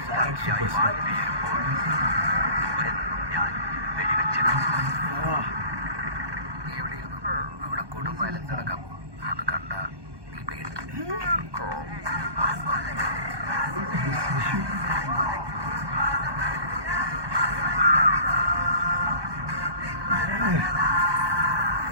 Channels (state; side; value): late; left; 1.2 ms